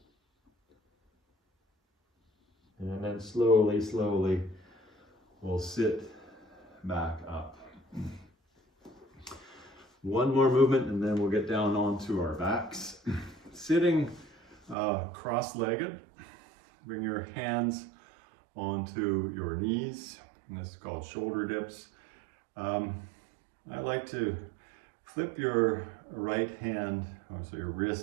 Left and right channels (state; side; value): drops out; left; at 14.8 s